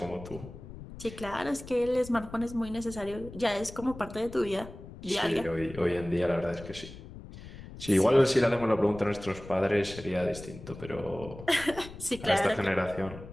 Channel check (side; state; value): left; noise; rumble, 14 dB below the sound